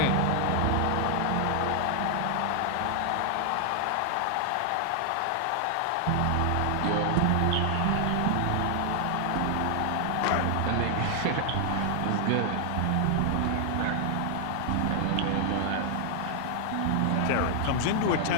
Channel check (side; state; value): both; different; correlation 0.00